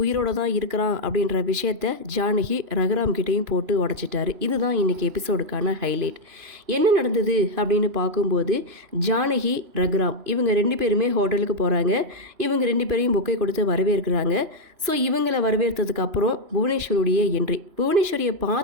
உயிரோடு தான் இருக்கிறான் அப்படின்ற விஷயத்த ஜானகி ரகுராம் கிட்டேயும் போட்டு உடச்சிட்டாரு. இதுதான் இன்றைக்கி எபிசோடுக்கான ஹைலைட். என்ன நடந்தது அப்படின்னு பார்க்கும்போது ஜானகி ரகுராம் இவங்க 2 பேருமே ஹோட்டலுக்கு போகிறாங்க. இவங்க 2 பேரையும் பொக்கை கொடுத்து வரவேற்கிறாங்க. ஸோ இவங்களை வரவேற்றதுக்கு அப்புறம் புவனேஸ்வரியுடைய என்ட்ரி. புவனேஸ்வரியை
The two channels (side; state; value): left; late; 3.0 ms